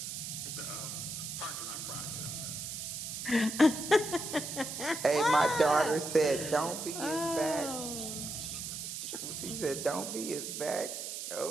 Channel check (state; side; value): noise; right; hiss, 6 dB below the sound